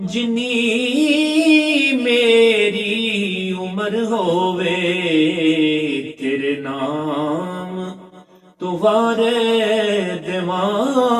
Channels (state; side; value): identical; both; correlation 1.00